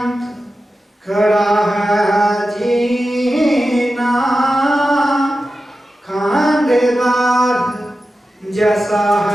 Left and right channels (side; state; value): both; normal; correlation 0.93